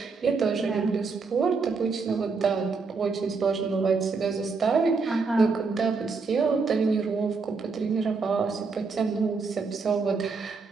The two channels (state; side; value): quieter; left; 4.6 dB